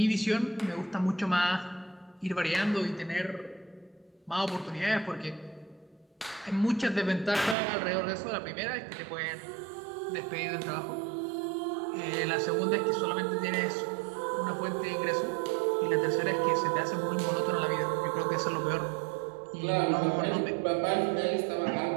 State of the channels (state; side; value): drops out; left; at 7.6 s